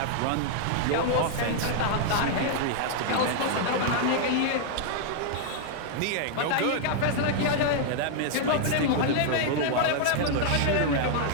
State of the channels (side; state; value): both; different; correlation -0.01